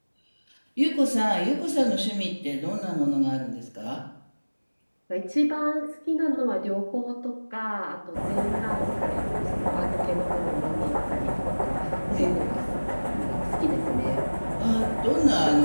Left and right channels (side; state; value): both; inverted; correlation -1.00